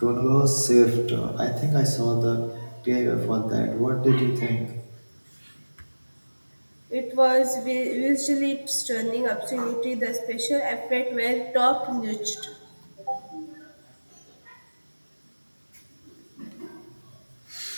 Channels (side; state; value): both; inverted; correlation -1.00